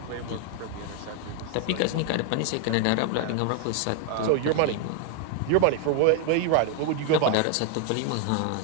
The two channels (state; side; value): different; both; correlation 0.00